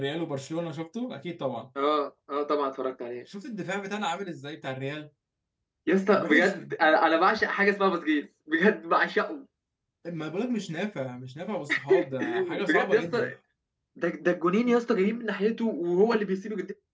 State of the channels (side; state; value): both; identical; correlation 1.00